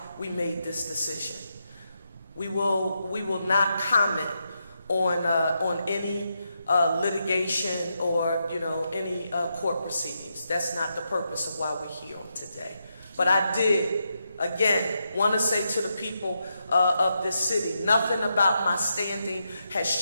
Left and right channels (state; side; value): inverted; both; correlation -0.84